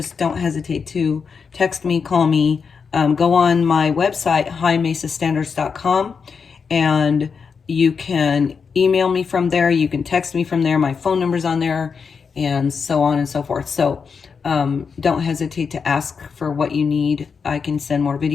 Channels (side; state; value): right; quieter; 5.8 dB